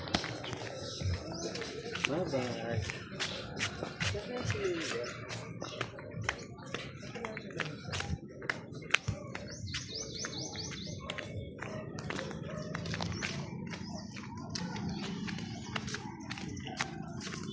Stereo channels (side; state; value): both; identical; correlation 1.00